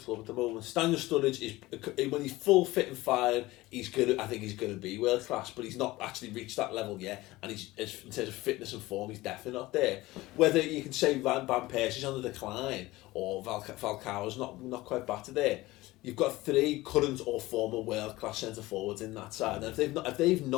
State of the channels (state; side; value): quieter; right; 19.0 dB